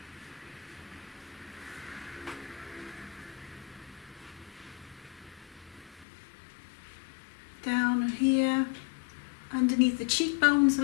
Down here, underneath the cheekbones a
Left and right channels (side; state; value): right; drops out; at 6.1 s